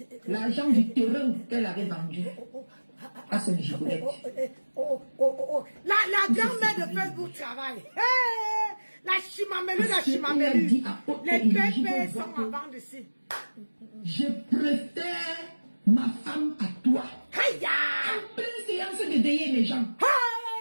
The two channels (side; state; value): both; inverted; correlation -1.00